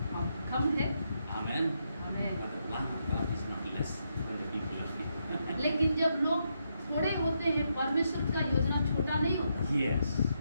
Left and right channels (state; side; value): inverted; both; correlation -0.80